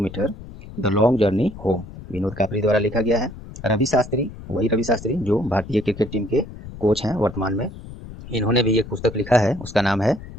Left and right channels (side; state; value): left; noise; rumble, 14 dB below the sound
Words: the long journey home. Vinod कापरी द्वारा लिखा गया है। रवि शास्त्री, वही रवि शास्त्री जो भारतीय क्रिकेट टीम के कोच हैं वर्तमान में, इन्होंने भी एक पुस्तक लिखा है, उसका नाम है